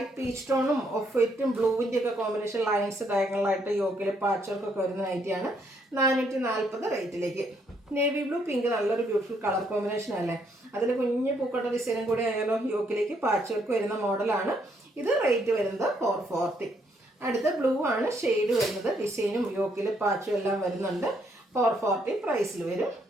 പീച്ച് ടോണും ഓഫ് വൈറ്റും ബ്ലൂവിൻ്റെ ഒക്കെ കോമ്പിനേഷൻ ലൈൻസ് ഡയഗണലായിട്ട് യോക്കിൽ പാച്ച് വർക്കൊക്കെ വരുന്ന നൈറ്റിയാണ്. 440 റേറ്റിലേക്ക്. നേവി ബ്ലൂ പിങ്ക് നല്ലൊരു ബ്യൂട്ടിഫുൾ കളർ കോമ്പിനേഷൻ അല്ലേ. അതിൽ കുഞ്ഞ് പൂക്കട്ട ഡിസൈനും കൂടി ആയാലും യോക്കിലേക്ക് പാച്ച് വർക്ക് വരുന്ന മോഡലാണ്. ഇത് റേറ്റ് വരുന്നത് 440. അടുത്ത ബ്ലൂ ആണ് ഷെയ്ഡ് വരുന്നത്. ഡിസൈനും യോക്കിൽ പാച്ചും എല്ലാം വരുന്നുണ്ട്. 440 പ്രൈസിൽ വരും.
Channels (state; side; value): normal; both; correlation 0.72